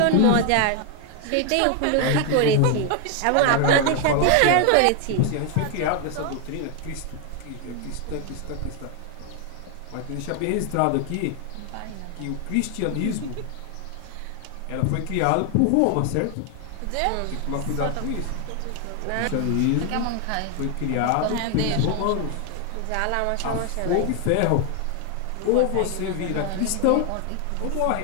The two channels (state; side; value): different; both; correlation 0.00